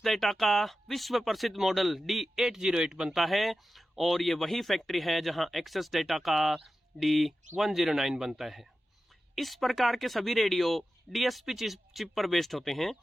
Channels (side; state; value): both; normal; correlation 0.93